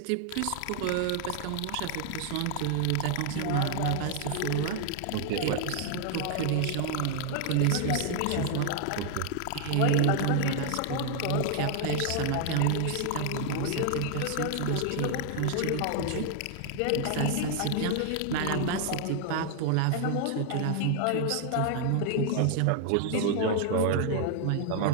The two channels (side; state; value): both; different; correlation 0.00